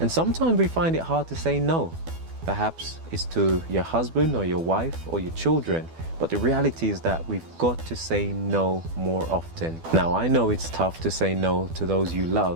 And sometimes we find it hard to say no. Perhaps it's to your husband or your wife or your children. But the reality is that we've got to say no more often. Now, I know it's tough to say no to those you love,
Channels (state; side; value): late; left; 12 ms